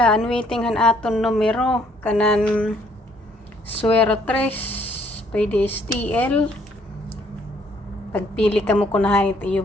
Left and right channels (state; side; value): normal; both; correlation 0.65